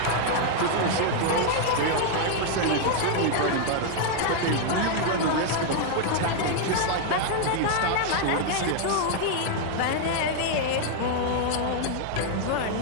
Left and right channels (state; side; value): different; both; correlation 0.00